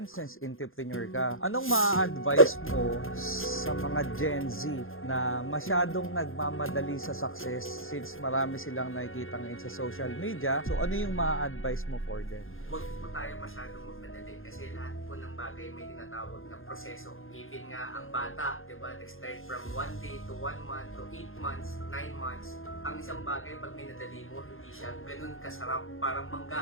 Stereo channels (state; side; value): late; right; 0.60 ms